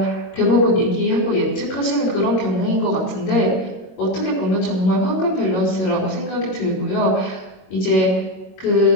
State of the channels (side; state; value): right; late; 22 ms